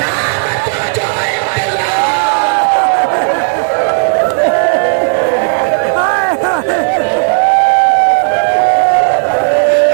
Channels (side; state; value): left; silent; digital silence